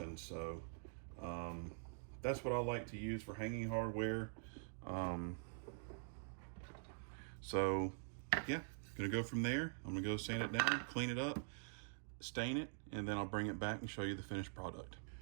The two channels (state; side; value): silent; left; digital silence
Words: So that's what I like to use for hanging hardware. So yeah, gonna go from there. I'm gonna go sand it down, clean it up, stain it, and then I'll bring it back and show you the finished product.